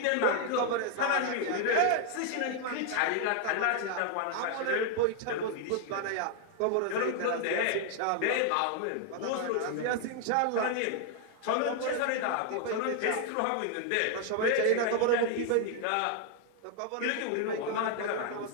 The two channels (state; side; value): different; both; correlation 0.00